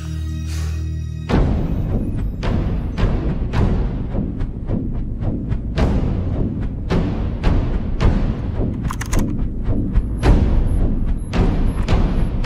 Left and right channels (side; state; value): both; identical; correlation 1.00